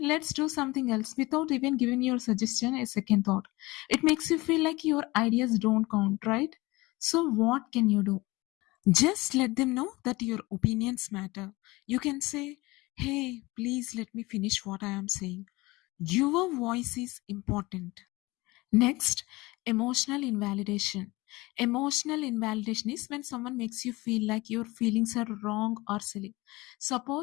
let's do something else without even giving your suggestion a second thought. It makes you feel like your ideas don't count, right? So, what can you do? Just let them know that your opinions matter. You can say, hey, please let me finish what I am saying. Your voice is important. Next, emotional invalidation. Emotional invalidation is when someone makes you feel like your feelings are wrong or silly.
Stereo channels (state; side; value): quieter; right; 21.6 dB